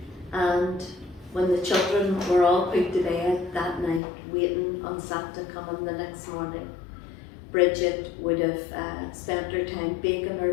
And when the children were all put to bed that night, waiting on Santa coming the next morning, Bridget would have spent her time baking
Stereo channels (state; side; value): drops out; right; at 4.0 s